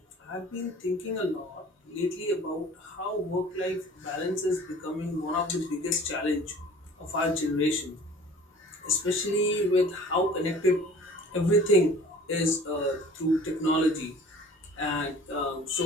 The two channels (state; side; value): normal; both; correlation 0.47